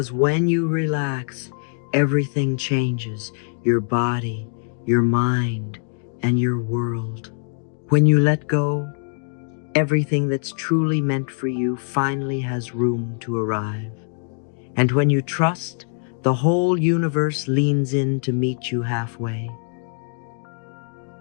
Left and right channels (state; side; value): silent; right; 64 dB below the other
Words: when you relax, everything changes: your body, your mind, and your world. When you let go, everything that's truly meant for you finally has room to arrive. And when you trust, the whole universe leans in to meet you halfway.